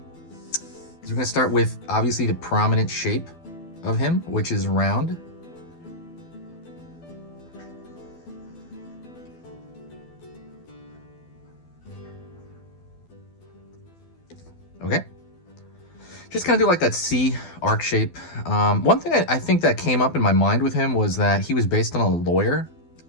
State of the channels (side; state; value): right; late; 12 ms